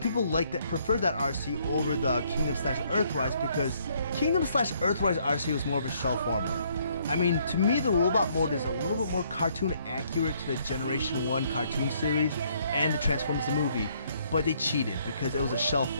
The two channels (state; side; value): inverted; both; correlation -0.67